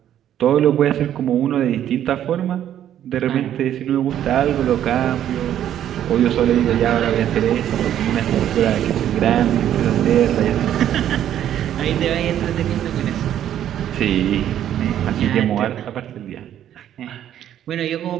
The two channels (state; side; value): quieter; left; 10.9 dB